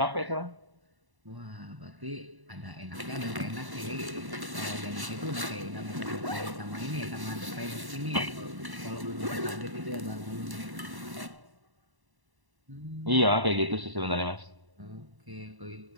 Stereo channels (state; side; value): late; left; 1.1 ms